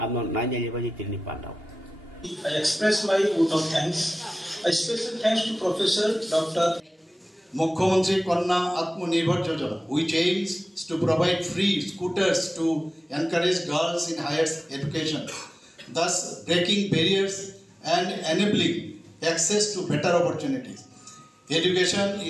আমন নাইজালি বাজি তিনি পান্ডাও I express my vote of thanks. A special thanks to Professor Dr. Mukhyamantri Kanna Atmanirbhar Yojana, which aims to provide free scooters to encourage girls in higher education, thus breaking barriers and enabling access to better opportunities. Education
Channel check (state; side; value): normal; both; correlation 0.96